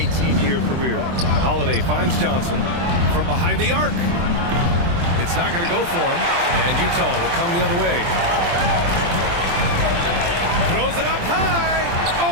career. Holiday finds Johnson from behind the arc. It's not going to go for him, and Utah will come the other way. Throws it up high.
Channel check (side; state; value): left; late; 23 ms